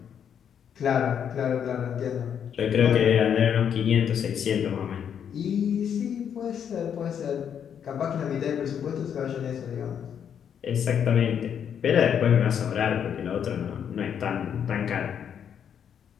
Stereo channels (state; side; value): quieter; right; 8.3 dB